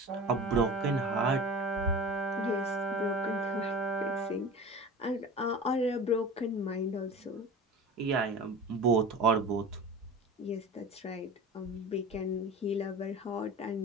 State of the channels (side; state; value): both; normal; correlation 0.35